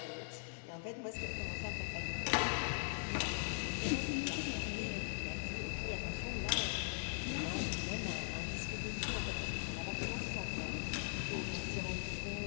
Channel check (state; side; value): silent; right; digital silence